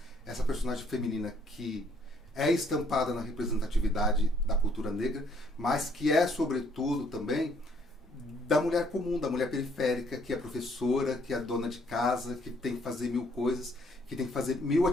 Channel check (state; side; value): normal; both; correlation 0.65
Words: essa personagem feminina que é estampada na representatividade da cultura negra, mas que é, sobretudo, também da mulher comum, da mulher periférica, que é professora, que é dona de casa, que tem que fazer 1000 coisas, que tem que fazer 1000